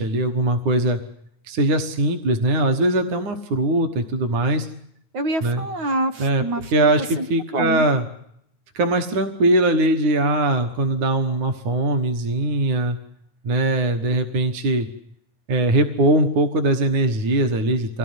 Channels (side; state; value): left; late; 9.3 ms